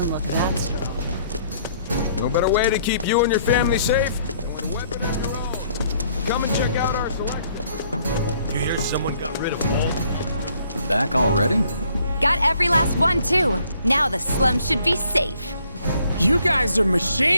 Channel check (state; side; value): inverted; both; correlation -0.64